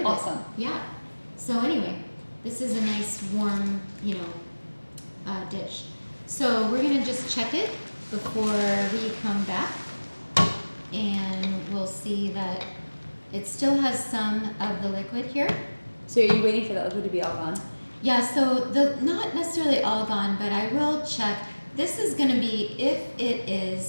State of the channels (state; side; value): inverted; both; correlation -1.00